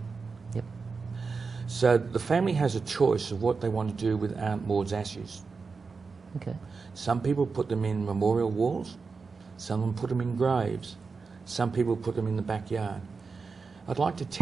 Yep. So the family has a choice of what they want to do with Aunt Maud's ashes. Okay. Some people put them in memorial walls, some of them put them in graves, some people put them in the backyard. I'd like to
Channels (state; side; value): quieter; left; 4.7 dB